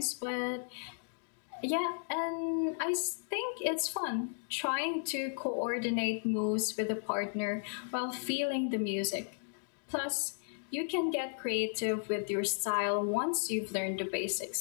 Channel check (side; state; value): right; silent; digital silence